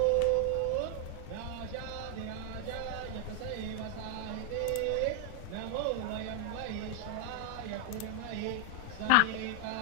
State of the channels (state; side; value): different; both; correlation 0.00